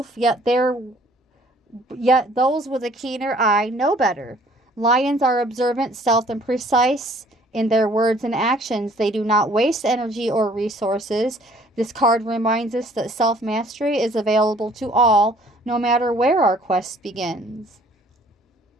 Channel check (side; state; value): both; normal; correlation 0.57